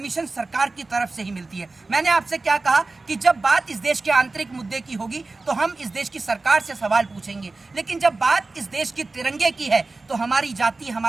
सरकार की तरफ से ही मिलती है। मैंने आपसे क्या कहा कि जब बात इस देश के आंतरिक मुद्दे की होगी तो हम इस देश की सरकार से सवाल पूछेंगे, लेकिन जब बात इस देश के तिरंगे की है तो हमारी जाति,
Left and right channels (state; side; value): quieter; left; 3.5 dB